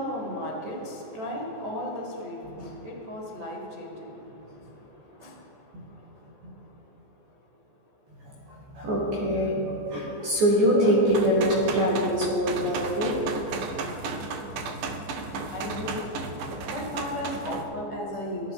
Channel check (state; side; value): late; left; 14 ms